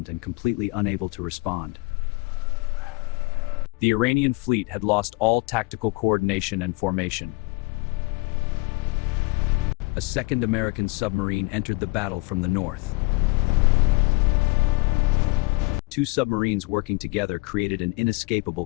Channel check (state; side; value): quieter; right; 27.6 dB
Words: and completely unable to respond. The Iranian fleet had lost all tactical coordination and formation. A second American submarine entered the battle from the north. 2 submarines working together created an inescapable